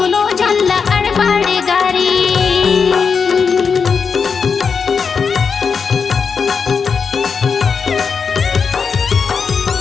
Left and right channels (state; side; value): quieter; right; 5.7 dB